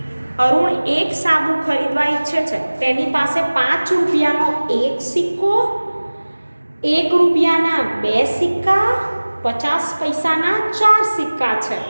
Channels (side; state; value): both; inverted; correlation -1.00